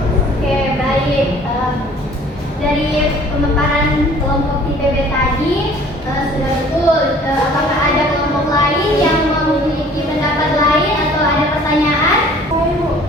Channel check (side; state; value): both; normal; correlation 0.52